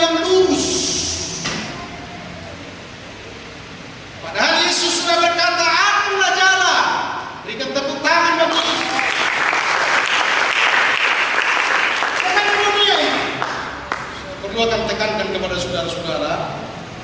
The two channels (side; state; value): both; identical; correlation 1.00